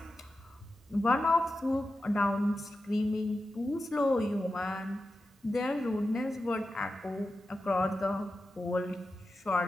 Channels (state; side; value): normal; both; correlation 0.92